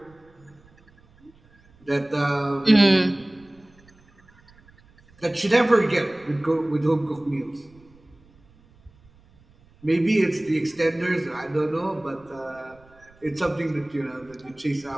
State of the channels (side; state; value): right; noise; rumble, 29 dB below the sound